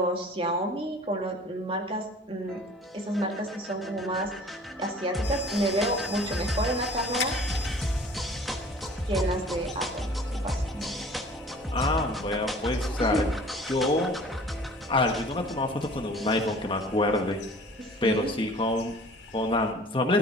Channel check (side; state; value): both; normal; correlation 0.47